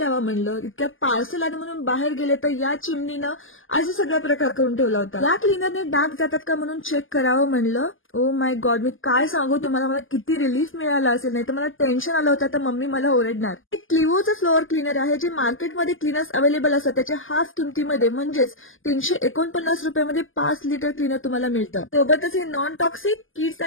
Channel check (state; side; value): late; right; 0.58 ms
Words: म्हणलं. इतक्यात पार्सल आलं म्हणून बाहेर गेले तर या चिमणीनं असा सगळा प्रकार करून ठेवला होता. या क्लीनरने डाग जातात का म्हणून चेक करावं म्हणलं. ओ माय गॉड, मी काय सांगू तुम्हाला, मला किती रिलीफ मिळाला असेल. नाही तर मला टेन्शन आलं होतं तर मम्मी मला ओरडणार. एक क्लिओचं फ्लोअर क्लीनर आहे जे मार्केटमध्ये क्लीनर्स अवेलेबल असतात त्याच्या हाफ किमतीमध्ये म्हणजेच 349 रुपयामध्ये 5 लिटर क्लीनर तुम्हाला मिळतं. सोबतच हे नॉन टॉक्सिक, किड्स